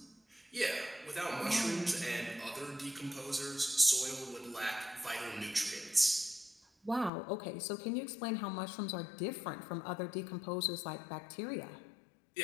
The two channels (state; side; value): drops out; right; at 7.1 s